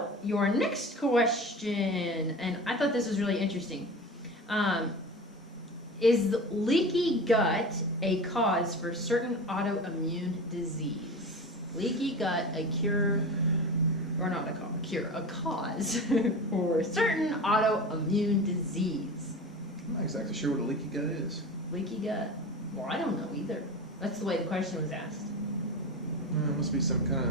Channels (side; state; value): both; normal; correlation 0.31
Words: your next question, and I thought this was really interesting. Is leaky gut a cause for certain autoimmune disease? Leaky gut, a cure, or not a cure, a cause for certain autoimmune disease? I'm not exactly sure what a leaky gut is. Leaky gut? Well, I don't know either. That's the way the question was asked. It must be some kind